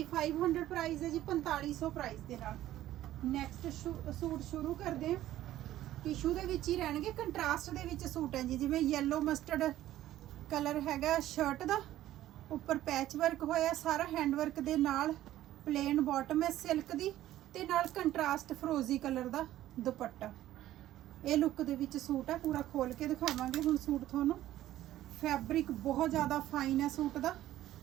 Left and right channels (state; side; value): quieter; left; 13.8 dB